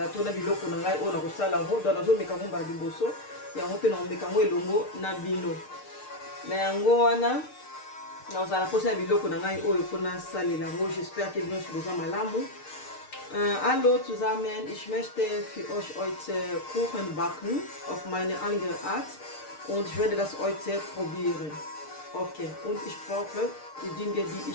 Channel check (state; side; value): late; right; 6.6 ms